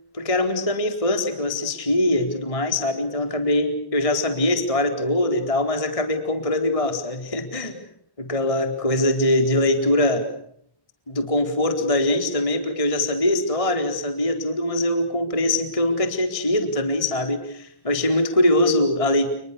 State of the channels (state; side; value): late; right; 1.6 ms